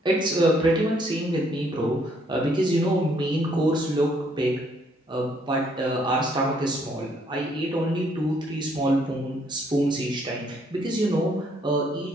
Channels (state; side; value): normal; both; correlation 0.67